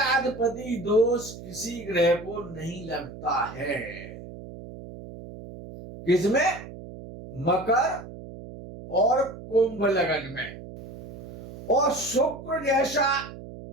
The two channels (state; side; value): noise; right; hum, 14 dB below the sound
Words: दोष किसी ग्रह को नहीं लगता है। किसमें? मकर और कुंभ लगन में। और शुक्र जैसा